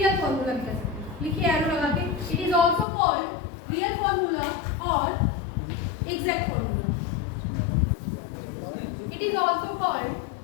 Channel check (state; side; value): drops out; right; at 2.9 s